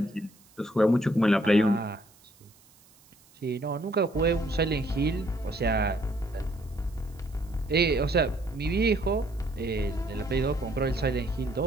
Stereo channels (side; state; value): right; noise; hiss, 28 dB below the sound